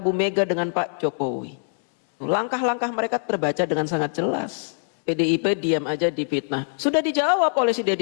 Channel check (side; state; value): right; silent; digital silence